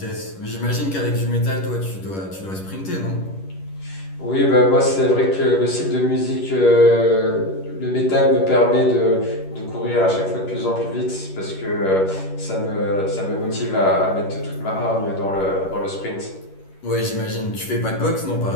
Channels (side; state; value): right; late; 11 ms